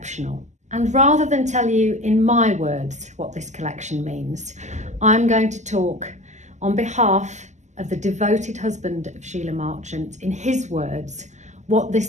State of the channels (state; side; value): late; left; 0.34 ms